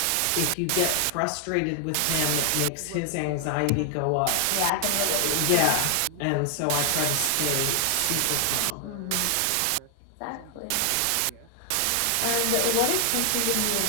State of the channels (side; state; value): both; different; correlation 0.00